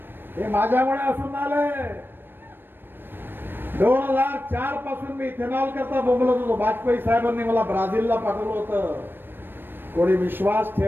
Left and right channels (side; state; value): left; late; 0.097 ms